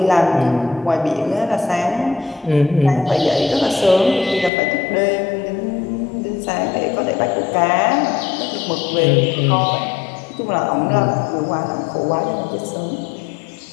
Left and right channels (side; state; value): right; drops out; at 4.5 s